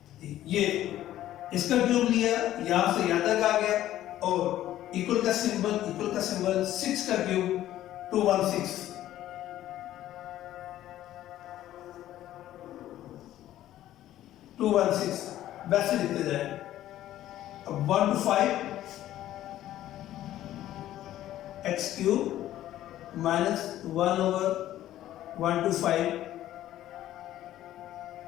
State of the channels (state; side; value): quieter; right; 13.3 dB